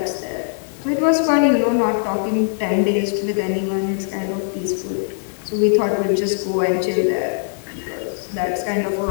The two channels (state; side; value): silent; right; 65 dB below the other